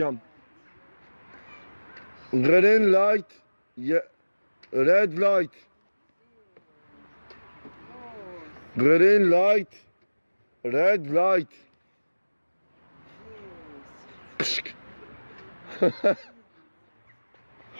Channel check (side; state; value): both; inverted; correlation -1.00